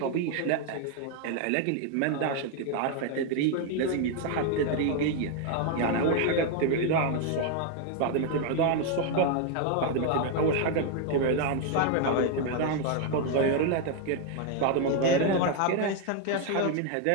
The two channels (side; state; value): both; different; correlation 0.01